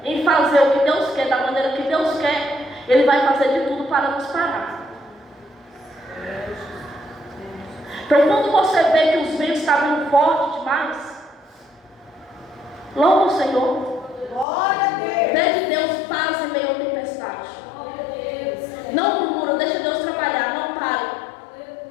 em fazer o que Deus quer, da maneira que Deus quer, Ele vai fazer de tudo para nos parar. Então quando você vê que os ventos estavam vindo forte demais, louva o Senhor. Pede Deus paz em meio à tempestade. Não murmura, deixa Deus trabalhar, não pare.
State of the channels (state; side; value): drops out; right; at 14.5 s